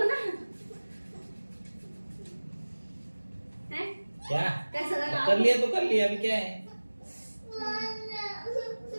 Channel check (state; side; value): inverted; both; correlation -1.00